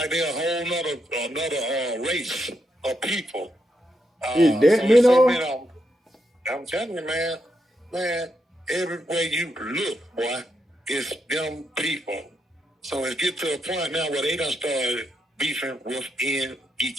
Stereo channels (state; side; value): normal; both; correlation 0.81